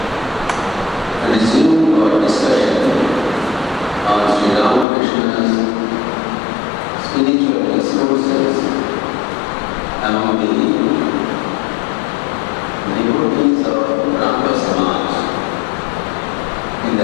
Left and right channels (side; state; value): right; drops out; at 4.9 s